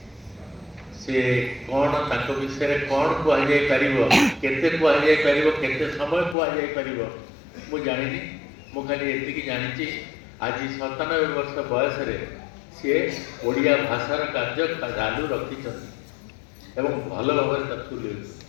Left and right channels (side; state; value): right; drops out; at 6.4 s